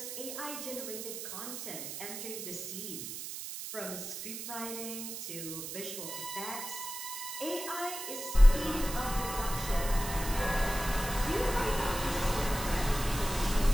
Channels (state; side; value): noise; right; hiss, 7 dB below the sound